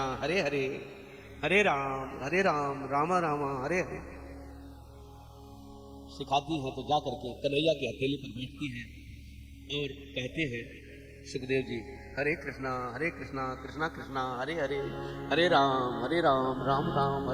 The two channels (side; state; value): both; identical; correlation 1.00